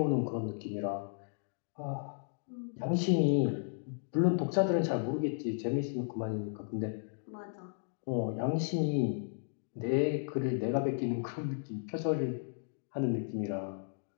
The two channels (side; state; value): right; silent; digital silence